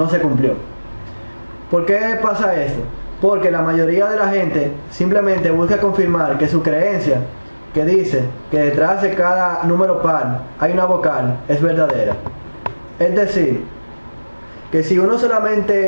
se cumplió. ¿Por qué pasa esto? Porque la mayoría de la gente simplemente busca confirmar que su creencia, que dice que detrás de cada número par hay una vocal, es verdadera. Es decir, que si uno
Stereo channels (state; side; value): inverted; both; correlation -1.00